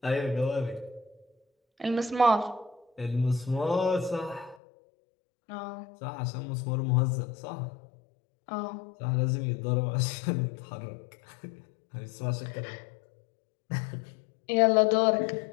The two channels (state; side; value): drops out; right; at 4.5 s